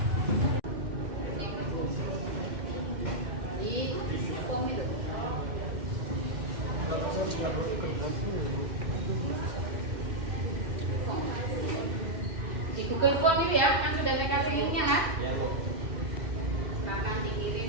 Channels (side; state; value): left; late; 2.6 ms